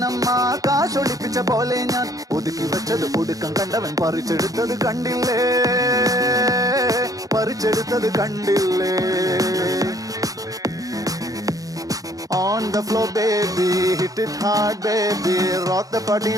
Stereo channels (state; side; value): late; left; 0.17 ms